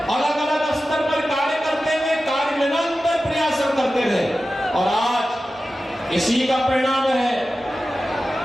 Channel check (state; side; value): normal; both; correlation 0.94